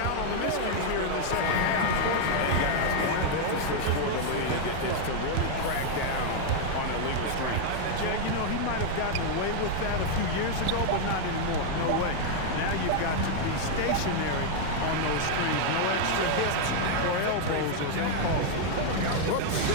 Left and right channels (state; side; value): different; both; correlation 0.00